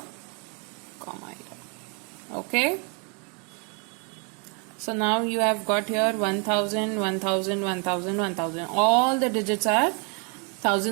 comma here. Okay? So now you have got here 1,000, 1,000, 1,000, 1,000. All the digits are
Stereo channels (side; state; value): left; quieter; 36.6 dB